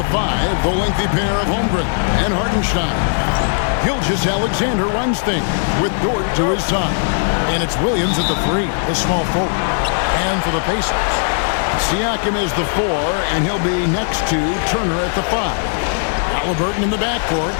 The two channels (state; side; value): silent; right; digital silence